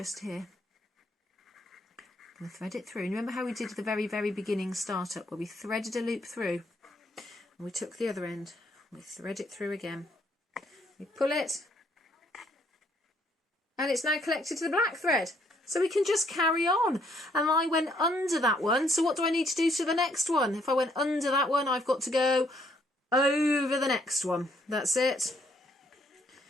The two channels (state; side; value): normal; both; correlation 0.69